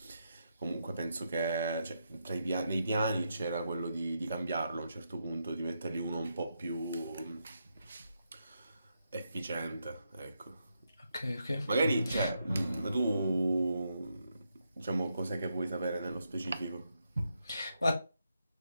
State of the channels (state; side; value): inverted; both; correlation -0.82